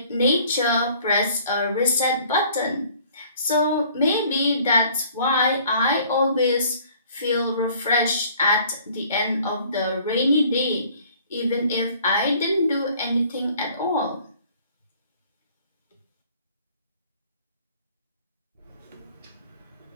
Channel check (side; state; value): both; inverted; correlation -0.55